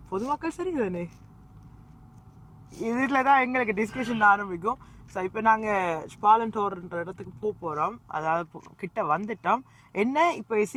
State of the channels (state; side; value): identical; both; correlation 1.00